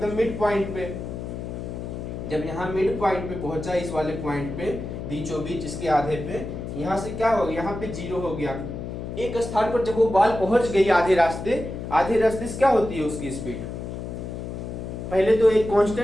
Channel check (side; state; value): left; noise; hum, 7 dB below the sound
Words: मिड पॉइंट पे। जब यहाँ मिड पॉइंट पे पहुंचा, इस वाले पॉइंट पे बीचों बीच, इसके आधे पे, यहाँ से क्या हो गया, यहाँ पे 0 हो गया। एक स्थान पर जब वो बॉल पहुंच गई आधे रास्ते से क्या होती है उसकी स्पीड, पहले तो एक